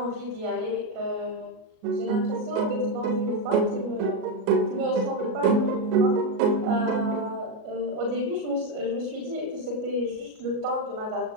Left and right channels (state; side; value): late; left; 37 ms